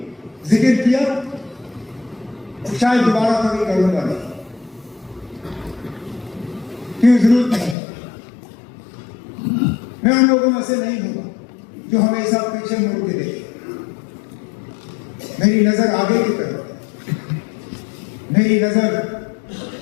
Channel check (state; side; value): drops out; right; at 7.8 s